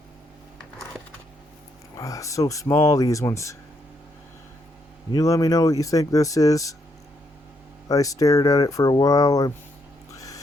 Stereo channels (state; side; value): normal; both; correlation 0.76